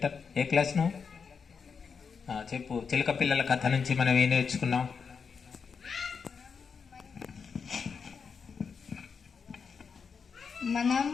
ఏ క్లాస్ నువ్వు? చెప్పు. చిలుక పిల్లల కథ నుంచి మనం ఏం నేర్చుకున్నాం? మనం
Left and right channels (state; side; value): quieter; right; 5.9 dB